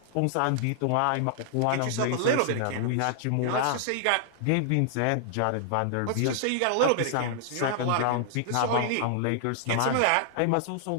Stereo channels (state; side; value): different; both; correlation -0.01